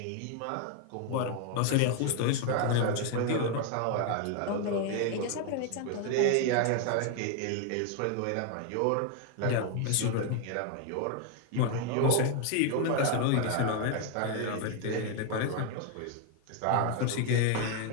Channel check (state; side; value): different; both; correlation 0.00